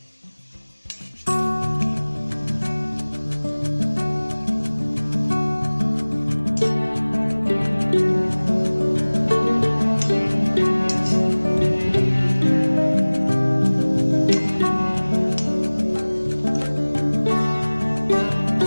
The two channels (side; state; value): both; inverted; correlation -1.00